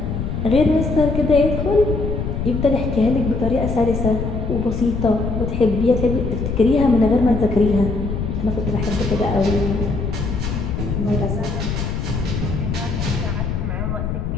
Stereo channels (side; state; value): left; noise; rumble, 3 dB below the sound